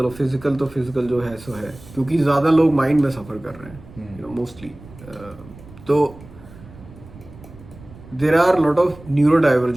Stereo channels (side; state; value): right; noise; rumble, 19 dB below the sound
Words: फिजिकल तो फिजिकल जो है सो है, क्योंकि ज़्यादा लोग माइंड में सफ़र कर रहे हैं, यू नो, मोस्टली। तो there are lot of न्यूरो